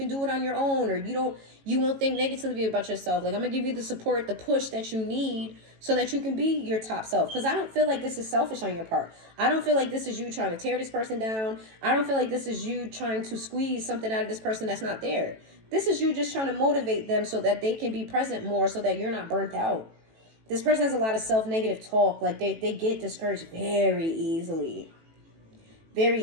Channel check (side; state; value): left; late; 18 ms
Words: do it on your own. Or you won't think negatively about yourself. Like, I'm going to give you the support, the push that you need so that you can be your top self. Because I don't feel like this is selfish on your part. I don't feel like this is you trying to tear this person down. I don't feel like this is you trying to squeeze something out of this person that's not there. This is you just trying to motivate them so that they can be present more so that you're not burnt out. This person has a lot of self-negative talk. Like, they get discouraged very easily. Very